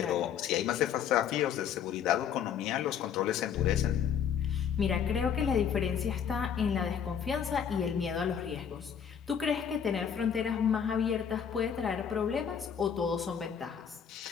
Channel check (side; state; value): right; quieter; 8.0 dB